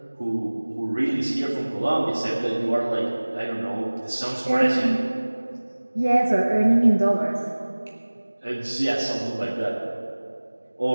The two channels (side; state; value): both; inverted; correlation -1.00